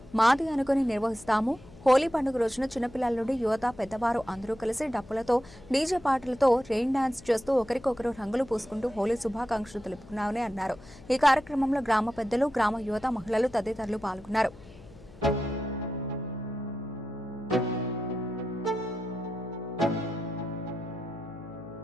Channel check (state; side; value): noise; left; hum, 20 dB below the sound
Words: మాది అనుకుని నిర్వహిస్తాము. హోలీ పండుగ రోజున చిన్నపిల్లల నుండి యువత, పెద్దవారు అందరూ కలిసి డప్పులతో, డీజే పాటలతో రెయిన్ డాన్స్ చేస్తూ ఒకరికొకరు రంగులు పూసుకుంటూ హోలీ శుభాకాంక్షలు తెలుపుకున్నామని అన్నారు. ఈ కార్యక్రమంలో గ్రామ పెద్దలు, గ్రామ యువత, మహిళలు తదితరులు పాల్గొన్నారు.